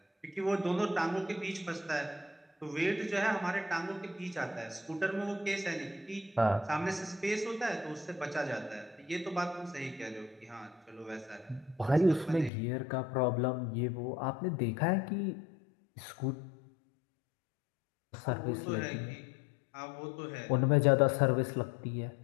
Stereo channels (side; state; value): right; drops out; at 12.5 s